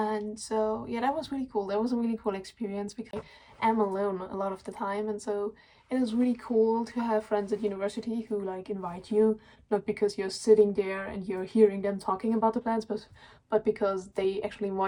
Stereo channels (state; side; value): identical; both; correlation 1.00